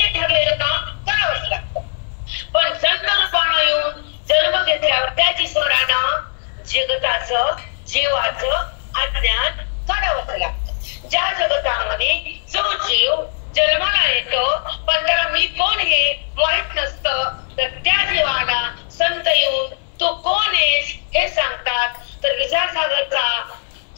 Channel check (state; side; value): silent; right; 66 dB below the other